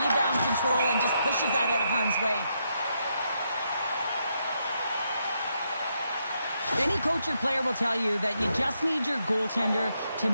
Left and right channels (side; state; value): both; inverted; correlation -0.79